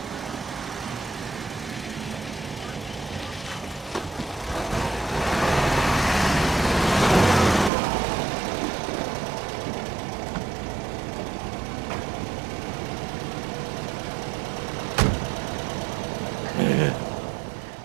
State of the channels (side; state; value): left; drops out; at 7.7 s